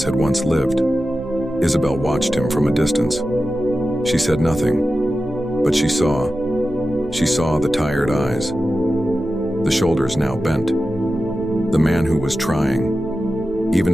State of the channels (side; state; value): right; noise; rumble, 17 dB below the sound